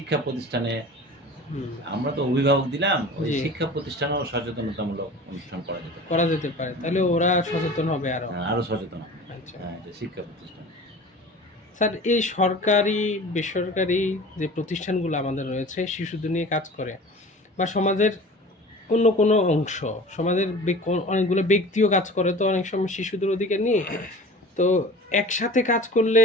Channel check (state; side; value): normal; both; correlation 0.40